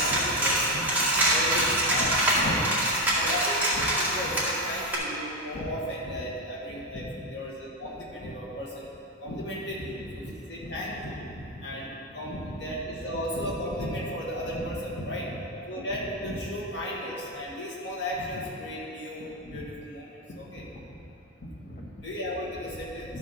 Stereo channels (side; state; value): both; normal; correlation 0.09